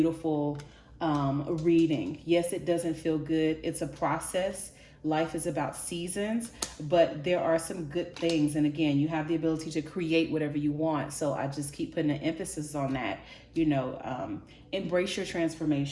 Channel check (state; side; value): identical; both; correlation 1.00